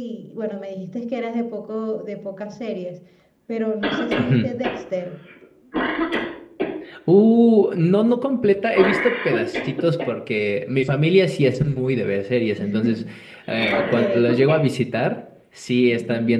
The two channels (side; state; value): both; identical; correlation 1.00